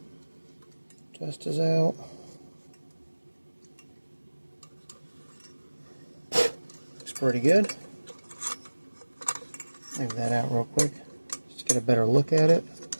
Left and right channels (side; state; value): both; inverted; correlation -1.00